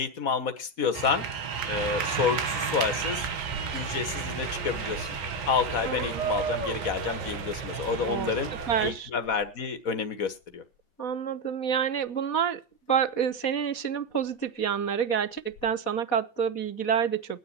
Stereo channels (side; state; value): right; late; 4.1 ms